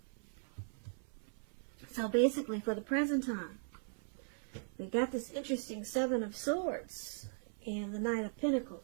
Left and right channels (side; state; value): left; silent; 52 dB below the other